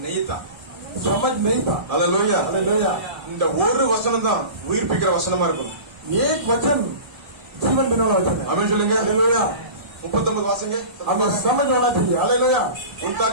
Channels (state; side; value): late; left; 1.7 ms